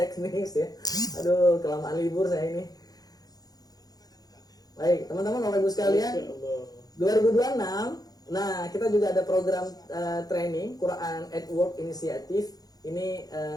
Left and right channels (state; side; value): late; right; 0.18 ms